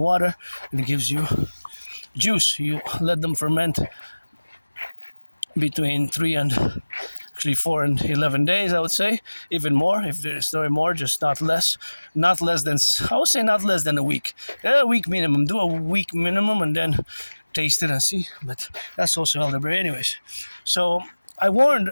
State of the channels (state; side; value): inverted; both; correlation -1.00